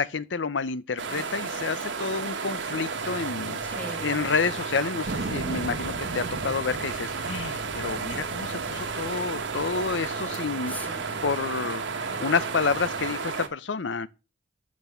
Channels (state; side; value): normal; both; correlation -0.10